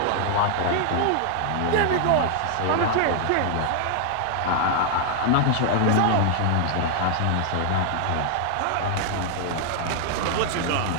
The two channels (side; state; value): both; different; correlation -0.01